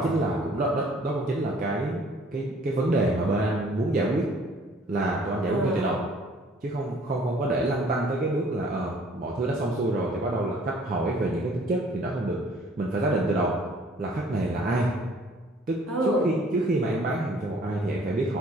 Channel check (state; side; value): normal; both; correlation 0.56